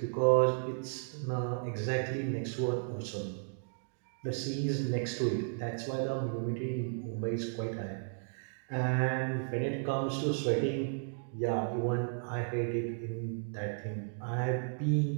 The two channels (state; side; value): silent; left; digital silence